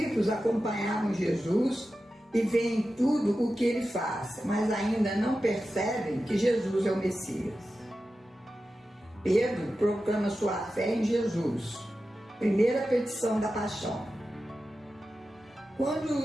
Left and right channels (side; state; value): both; normal; correlation 0.92